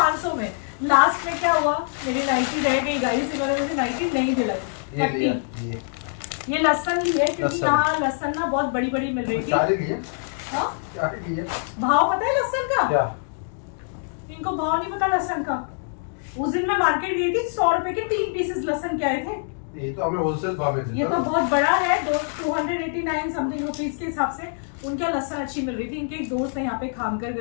में। लास्ट में क्या हुआ, मेरी नाइटी रह गई गाइस, इन्होंने मुझे नाइटी नहीं दिलाई। ये लहसन ली है क्योंकि यहाँ लहसन ना बहुत बड़ी बड़ी मिल रही थी। भाव पता है लहसन का? क्या? इनको भाव नहीं पता लहसन का। उस दिन मैं मार्केट गई थी, 100 रुपए के 3 पीसेस लहसन के आए थे। ये तो हमें होलसेल भाव में, ये तो बहुत बड़ा है, 289 समथिंग रुपीज के हिसाब से उनका लहसन अच्छी मिल रही थी। इनके एक दोस्त है यहाँ पे खामकर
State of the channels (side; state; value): right; silent; digital silence